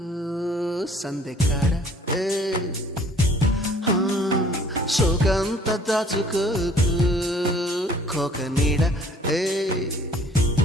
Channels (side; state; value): both; normal; correlation 0.55